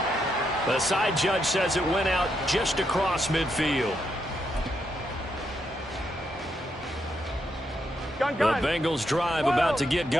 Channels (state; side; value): normal; both; correlation 0.80